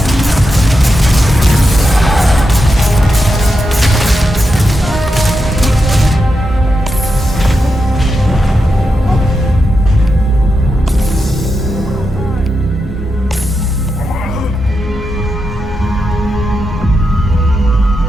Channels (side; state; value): both; normal; correlation 0.87